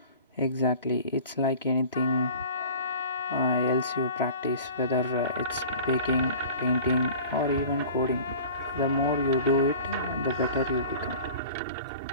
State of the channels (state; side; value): inverted; both; correlation -0.41